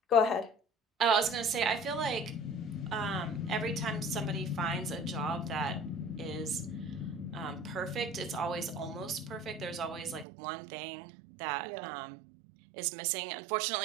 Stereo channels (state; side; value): drops out; left; at 10.2 s